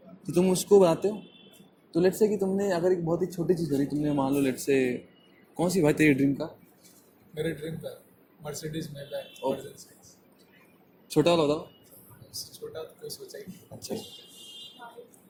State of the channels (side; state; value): both; identical; correlation 1.00